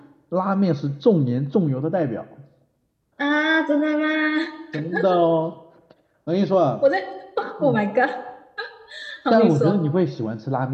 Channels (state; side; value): identical; both; correlation 1.00